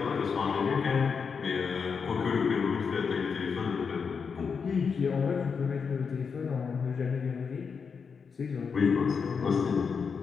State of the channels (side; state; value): right; quieter; 5.8 dB